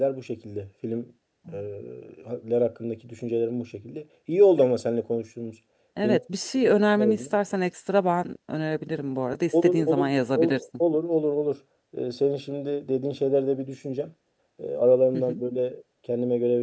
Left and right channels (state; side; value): identical; both; correlation 1.00